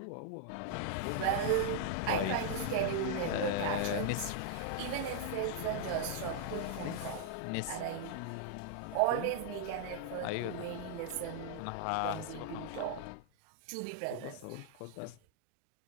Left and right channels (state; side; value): different; both; correlation -0.01